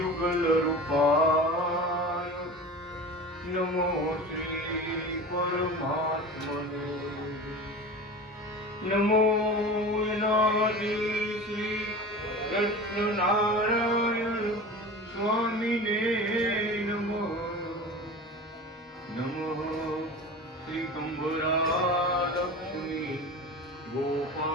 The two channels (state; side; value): normal; both; correlation 0.33